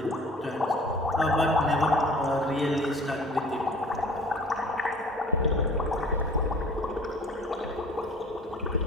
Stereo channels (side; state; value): both; normal; correlation 0.48